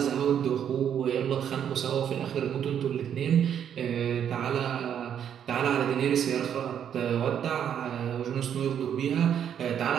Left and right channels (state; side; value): quieter; left; 9.0 dB